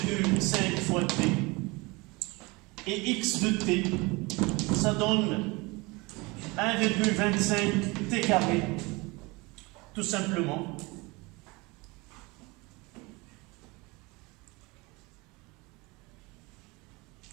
fois T, et X de T, ça donne 1,25 T carré, tout simplement.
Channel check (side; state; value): left; quieter; 25.1 dB